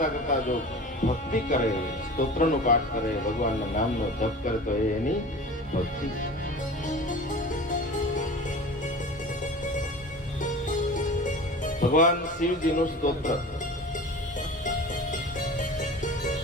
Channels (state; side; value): normal; both; correlation 0.37